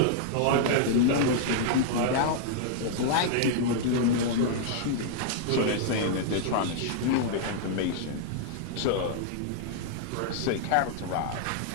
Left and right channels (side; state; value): both; different; correlation -0.01